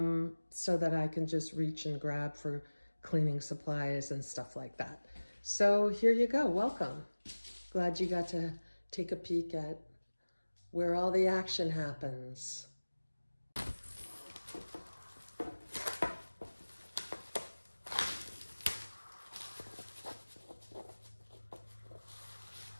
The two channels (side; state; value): both; inverted; correlation -1.00